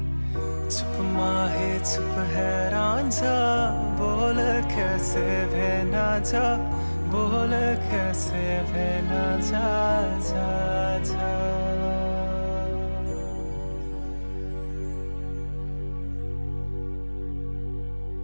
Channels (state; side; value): inverted; both; correlation -1.00